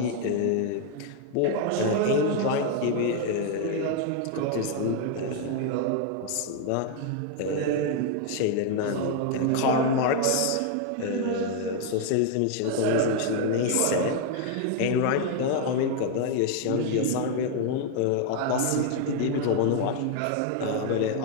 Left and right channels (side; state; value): both; different; correlation 0.00